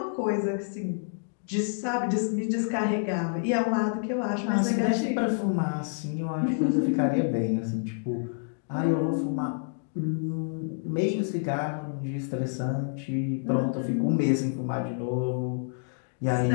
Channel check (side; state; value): right; silent; digital silence